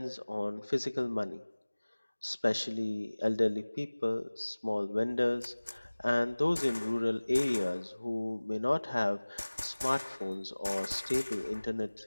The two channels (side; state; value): both; inverted; correlation -1.00